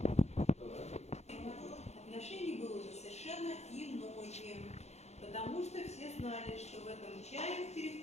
Отношение было уже совершенно иное, потому что все знали, что в этом чае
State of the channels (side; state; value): right; late; 0.32 ms